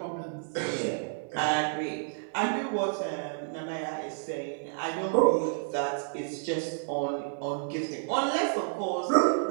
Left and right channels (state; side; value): silent; left; digital silence